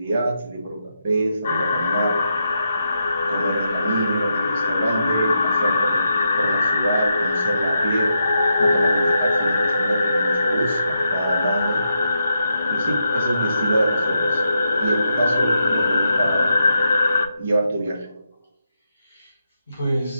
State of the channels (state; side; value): inverted; both; correlation -0.83